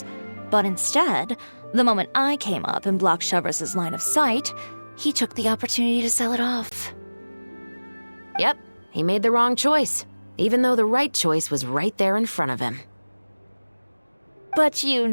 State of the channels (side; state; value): both; inverted; correlation -1.00